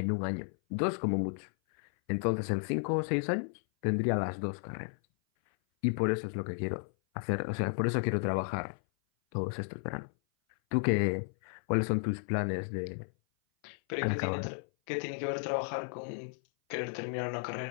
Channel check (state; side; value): silent; right; 55 dB below the other